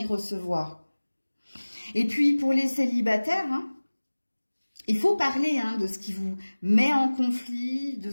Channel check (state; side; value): inverted; both; correlation -1.00